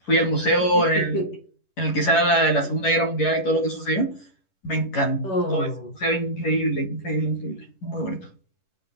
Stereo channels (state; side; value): late; right; 11 ms